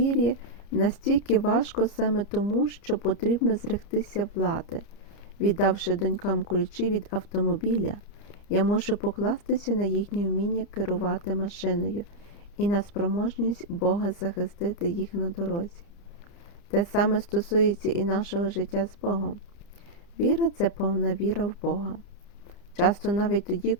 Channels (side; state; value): right; late; 30 ms